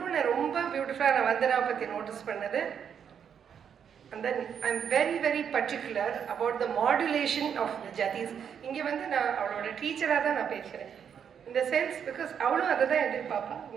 ரொம்ப பியூட்டிஃபுல்லாக நான் வந்தனா பற்றி notice பண்ணது, and then I'm very very particular about the modulation of the jatis. இங்கே வந்து நான் அவளோட டீச்சராக தான் நான் பேசுகிறேன். In the sense, because அவளும் அதை தான் எதிர்பார்ப்பா.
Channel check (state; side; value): quieter; left; 7.8 dB